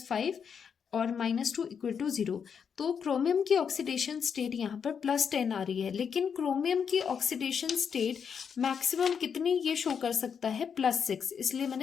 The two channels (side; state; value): right; quieter; 6.9 dB